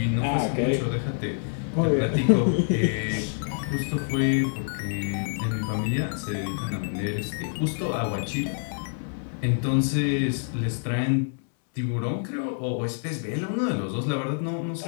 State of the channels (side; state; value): right; silent; digital silence